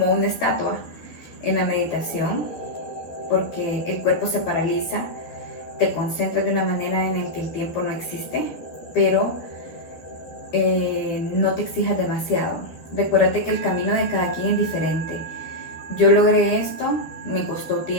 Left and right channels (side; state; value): right; late; 12 ms